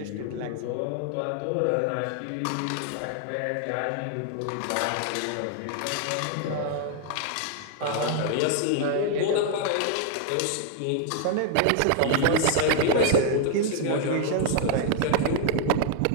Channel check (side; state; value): both; different; correlation 0.00